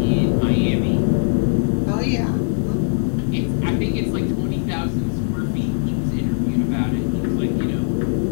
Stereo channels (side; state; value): right; silent; 65 dB below the other